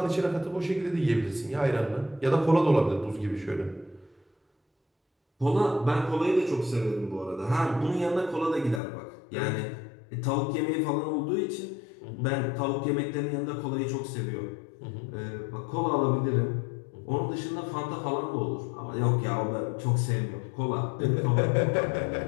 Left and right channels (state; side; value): drops out; right; at 8.8 s